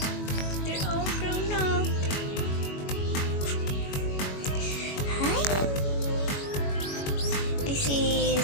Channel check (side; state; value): right; late; 21 ms